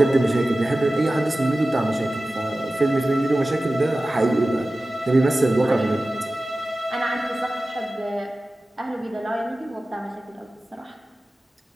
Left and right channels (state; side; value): normal; both; correlation 0.95